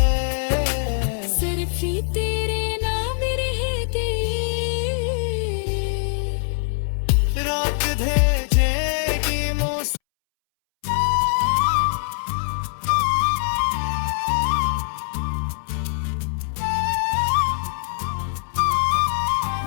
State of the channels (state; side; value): silent; right; 64 dB below the other